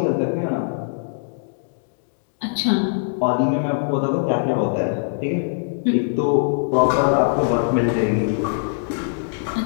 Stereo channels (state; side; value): silent; right; digital silence